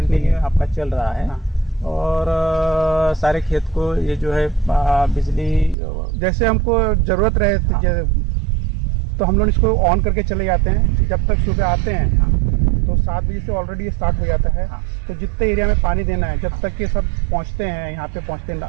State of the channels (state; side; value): drops out; left; at 5.8 s